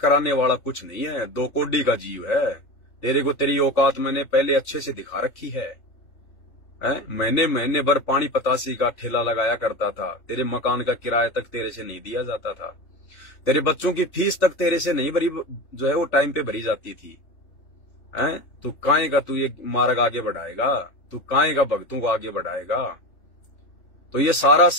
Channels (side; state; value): right; late; 3.4 ms